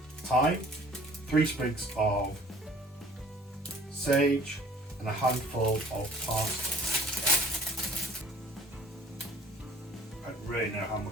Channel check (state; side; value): normal; both; correlation 0.53